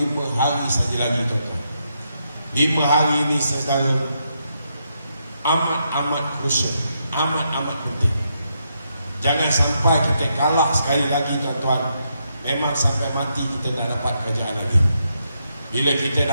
hari saja lagi tuan-tuan. 5 hari ini saudara amat-amat krusial, amat-amat penting. Jangan sampai kita kalah sekali lagi tuan-tuan. Memang sampai mati kita tak dapat kerajaan lagi. Bila kita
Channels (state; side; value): inverted; both; correlation -0.80